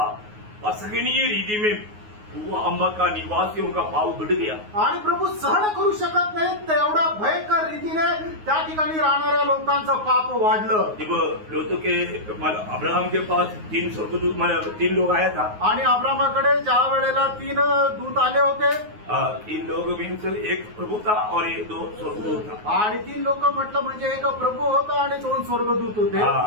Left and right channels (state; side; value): late; left; 9.5 ms